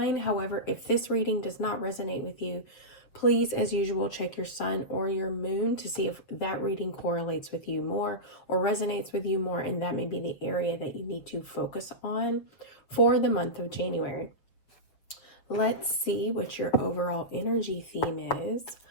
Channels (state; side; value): late; right; 7.3 ms